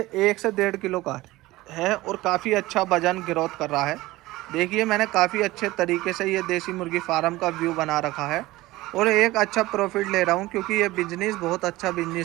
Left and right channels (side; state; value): left; quieter; 18.6 dB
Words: 1 से 1.5 किलो का है और काफ़ी अच्छा वजन ग्रोथ कर रहा है। देखिए मैंने काफ़ी अच्छे तरीके से ये देसी मुर्गी फार्म का व्यू बना रखा है और एक अच्छा प्रॉफिट ले रहा हूँ, क्योंकि ये बिजनेस बहुत अच्छा